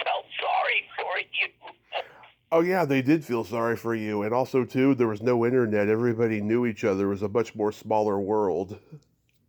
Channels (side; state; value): both; identical; correlation 1.00